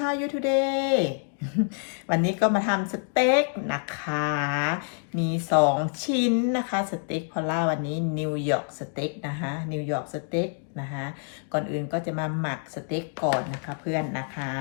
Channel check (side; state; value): right; silent; 60 dB below the other